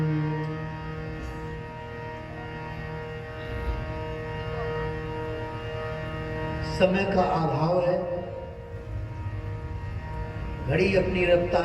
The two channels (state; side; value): identical; both; correlation 1.00